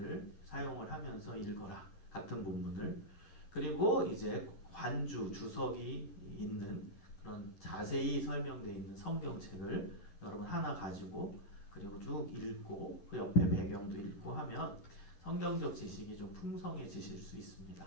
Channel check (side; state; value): right; late; 11 ms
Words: 사용을 하면서 읽어라. 같은 본문을. 그리고 이제 관주, 주석이 있는 그런 자세히 설명되어 있는 성경책을 여러분 하나 가지고 그리고 쭉 읽고 그 옆에 배경도 읽고 하면 성경적 지식이 좀 풍성해지실 수 있습니다.